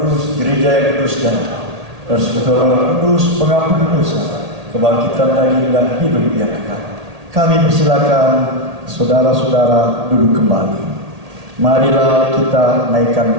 gereja yang kudus dan persekutuan orang kudus, pengampun dosa, kebangkitan daging dan hidup yang kekal. Kami persilakan saudara-saudara duduk kembali. Marilah kita naikkan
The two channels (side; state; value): left; late; 1.8 ms